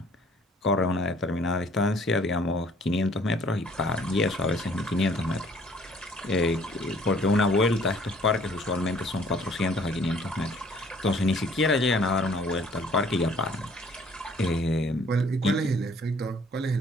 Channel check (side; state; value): both; normal; correlation 0.58